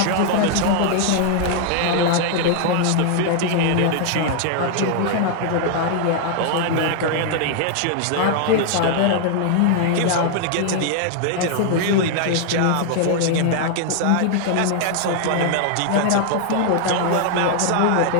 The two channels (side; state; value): both; different; correlation 0.00